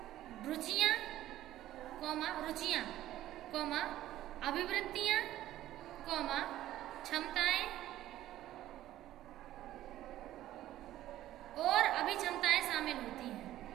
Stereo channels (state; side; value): quieter; left; 13.9 dB